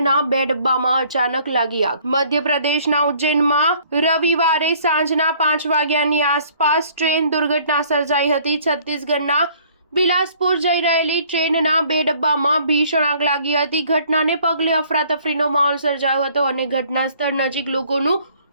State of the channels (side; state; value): both; inverted; correlation -0.58